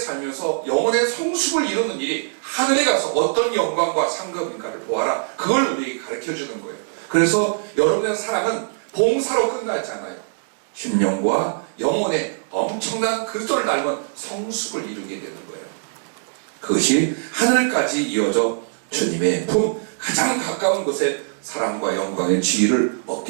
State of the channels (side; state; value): left; silent; digital silence